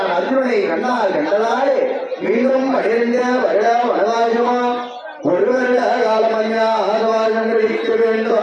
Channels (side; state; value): both; identical; correlation 1.00